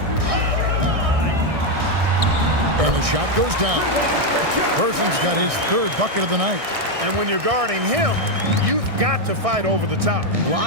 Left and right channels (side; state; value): left; late; 1.6 ms